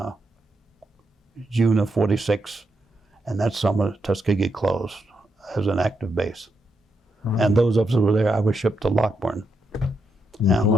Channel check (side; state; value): both; normal; correlation 0.82